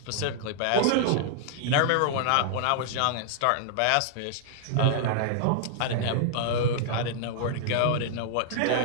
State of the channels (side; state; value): both; different; correlation -0.01